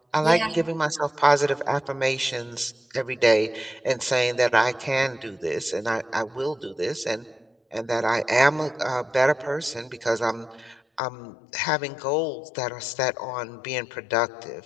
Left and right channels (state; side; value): drops out; right; at 11.0 s